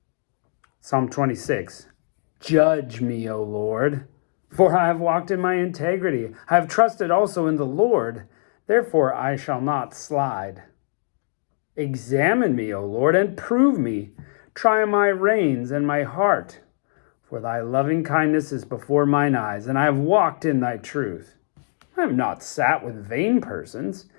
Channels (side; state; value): right; silent; 60 dB below the other